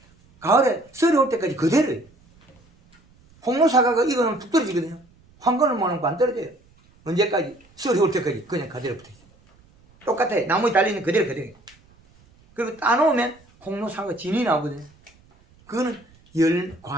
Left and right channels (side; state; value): right; noise; rumble, 30 dB below the sound